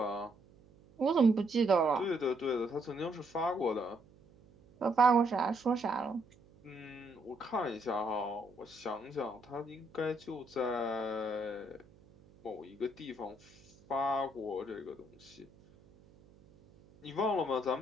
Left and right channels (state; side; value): noise; right; hum, 26 dB below the sound